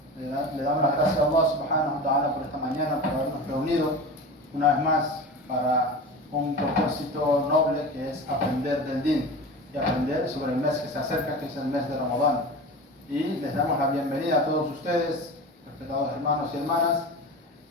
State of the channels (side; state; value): both; normal; correlation 0.31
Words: le damos las gracias a Allah subhanahu wa ta'ala por esta mañana, por habernos reunido una vez más para un propósito noble que es aprender del din y aprender sobre el mes que se acerca, que es el mes de Ramadán. Y les damos la bienvenida a todos ustedes, respetados hermanos y hermanas,